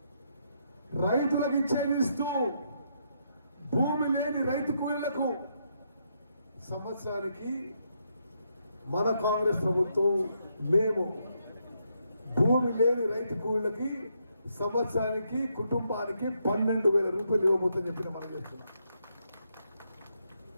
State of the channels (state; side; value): inverted; both; correlation -0.78